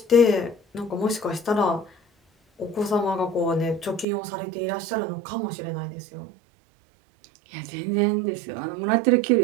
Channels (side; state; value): left; drops out; at 4.0 s